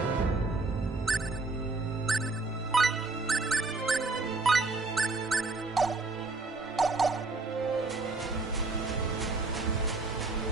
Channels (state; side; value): quieter; left; 3.5 dB